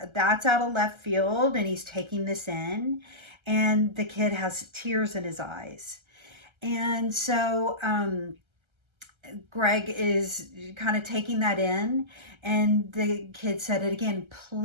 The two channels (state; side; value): late; left; 1.3 ms